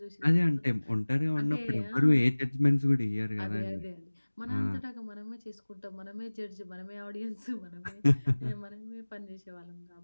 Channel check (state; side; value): inverted; both; correlation -1.00